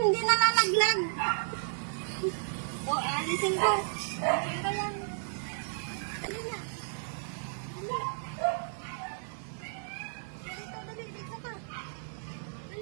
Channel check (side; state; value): left; silent; 56 dB below the other